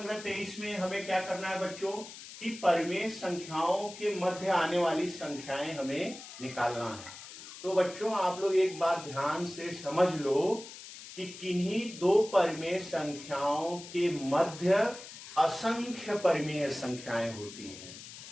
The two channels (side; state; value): left; noise; hiss, 14 dB below the sound